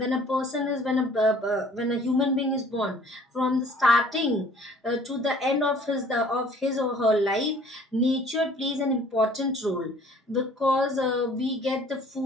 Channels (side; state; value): both; normal; correlation 0.53